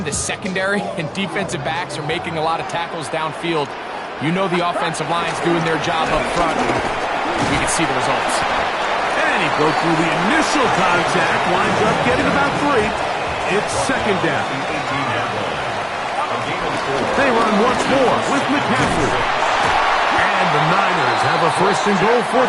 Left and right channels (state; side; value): identical; both; correlation 1.00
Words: the secondary and defensive backs are making a lot of tackles downfield, you know the offensive line's doing their job up front. We can see the results. And he broke through the initial contact, winds up getting about 3. It's 2nd down. They run once more with McCaffrey. And the Niners have a 1st and goal